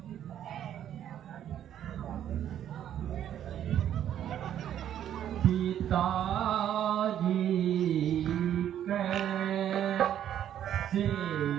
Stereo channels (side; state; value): left; quieter; 10.5 dB